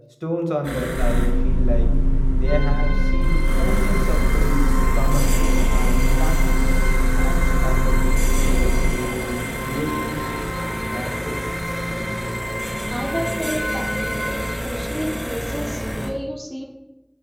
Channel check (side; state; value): both; identical; correlation 1.00